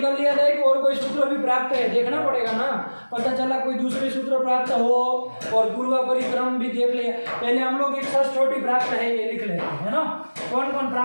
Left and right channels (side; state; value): both; inverted; correlation -1.00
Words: कर लिया जाए कि और कोई सूत्र भी प्राप्त है, देखना पड़ेगा ना। पता चला कोई दूसरे सूत्र प्राप्त हो और पूर्व परिक्रम भी देख लिया। पहले हम लोग एक सस छोटी प्राप्त है ये लिख लेते हैं ना। कौन कौन